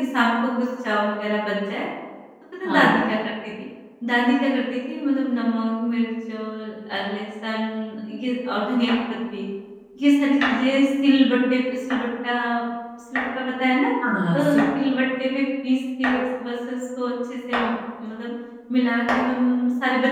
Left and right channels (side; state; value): both; identical; correlation 1.00